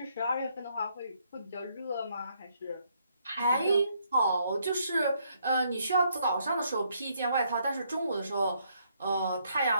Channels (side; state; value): both; inverted; correlation -0.72